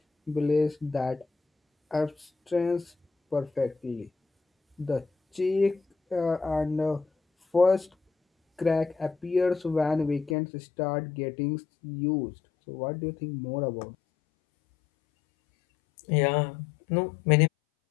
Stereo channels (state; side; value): drops out; right; at 10.4 s